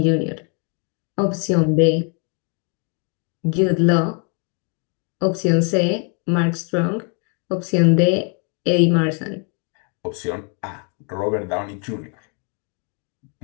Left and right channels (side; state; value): right; quieter; 36.9 dB